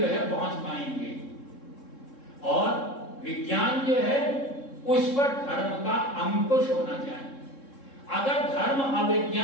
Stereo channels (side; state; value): right; late; 3.7 ms